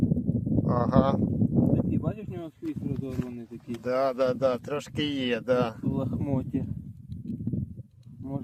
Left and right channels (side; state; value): both; identical; correlation 1.00